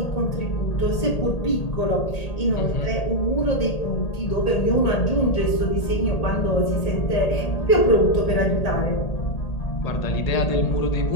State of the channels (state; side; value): late; right; 1.8 ms